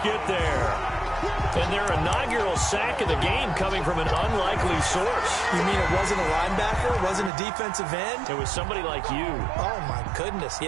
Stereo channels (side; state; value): left; drops out; at 7.3 s